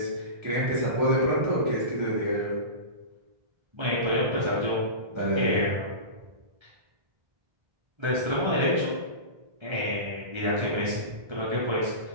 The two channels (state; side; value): late; left; 1.3 ms